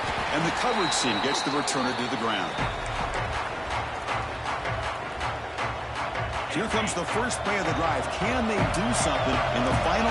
And the coverage team gets the returner to the ground. Here comes the first play of the drive. Can they do something in the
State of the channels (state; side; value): identical; both; correlation 1.00